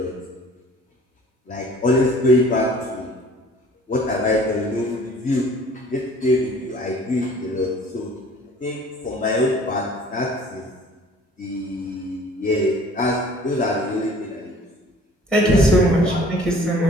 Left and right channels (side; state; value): both; normal; correlation 0.51